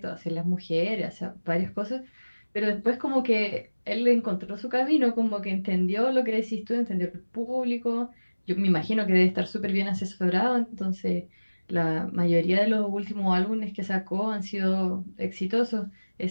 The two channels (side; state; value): both; inverted; correlation -1.00